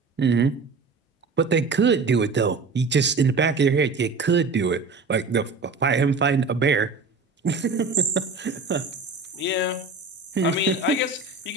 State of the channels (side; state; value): left; quieter; 4.1 dB